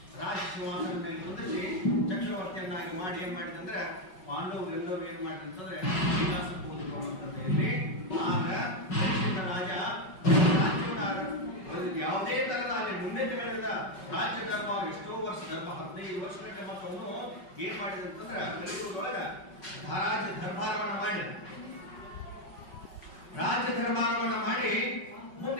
ರಾಜ ಸಿಂಹಾಸನದ ಮೇಲೆ ಕುಂದಿಸಿ ಚಕ್ರವರ್ತಿಯನ್ನಾಗಿ ಮಾಡಿ ಏನ್ ಮಾಡಿದಂದ್ರೆ, ಪಾಂಡವರು ಎಲ್ಲರೂ ಏನ್ ಮಾಡಿದಂತಂದ್ರೆ ವಿಲಾಸಕ್ಕೆ ಹೋದ್ರು ಅಂತಂದ್ರೆ ಇಲ್ಲಿ. ಆಗ ಪರೀಕ್ಷಿತ ರಾಜ ರಾಜ್ಯವನ್ನ ಯಾವುದೇ ತರದ ಅಲ್ಲಿ ಮುನ್ನಡೆಗಳಿಂದ ರಾಜ್ಯ ದರ್ಬಾರ ಎಷ್ಟೋ ವರ್ಷ, 15 ವರ್ಷಕ್ಕೆ ಮತ್ತೆ ಅವನು ಏನ್ ಮಾಡಿದಂತಂದ್ರೆ ಕಲಿಯುಗದೊಳಗ ರಾಜ್ಯ ದರ್ಬಾರವನ್ನ ಮಾಡಿ ಮುಂದೆ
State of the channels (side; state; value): right; late; 5.3 ms